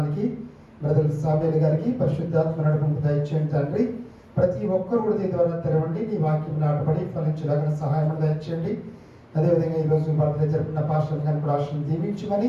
బ్రదర్ సామ్యూల్ గారికి పరిశుద్ధాత్మ నడుపుకు దయచేయండి తండ్రి. ప్రతి ఒక్కరు కూడా దీని ద్వారా తెరవండి, నీ వాక్యం నాటబడి ఫలించడానికి సహాయం దయచేయండి. అదేవిధంగా ఈరోజు బర్త్డే జరుపుకున్న పాస్టర్ గారిని కూడా ఆశను దీవించమని,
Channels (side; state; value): both; identical; correlation 1.00